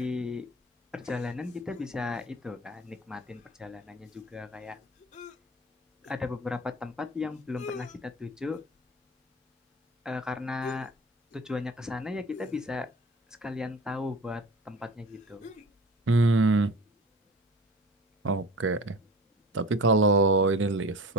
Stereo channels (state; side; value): normal; both; correlation 0.38